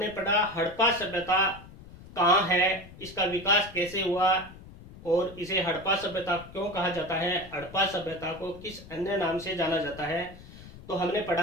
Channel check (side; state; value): left; noise; rumble, 18 dB below the sound